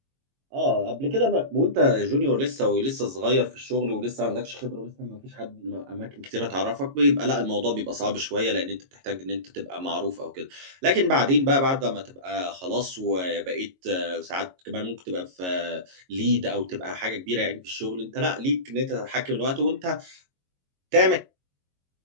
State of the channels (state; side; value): late; left; 22 ms